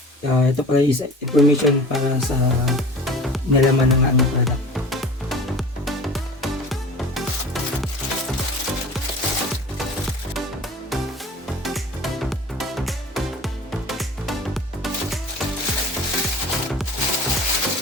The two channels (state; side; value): normal; both; correlation 0.40